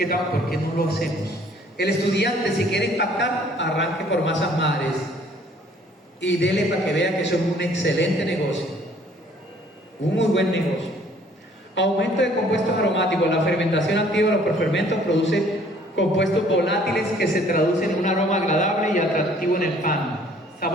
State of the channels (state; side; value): normal; both; correlation 0.58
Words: estamos, ¿por qué no lo hacemos? El estudiante, si quiere impactar, arranque por masas madres y dele para que vea que eso es un excelente negocio, un muy buen negocio. Aumento de compuestos aromáticos. La fermentación activa de los prefermentos produce compuestos volátiles que se traducen en un aroma agradable y atractivo en el pan.